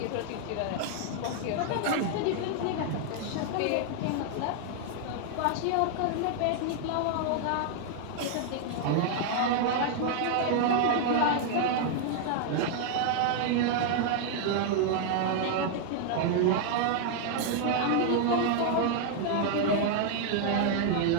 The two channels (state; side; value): different; both; correlation 0.00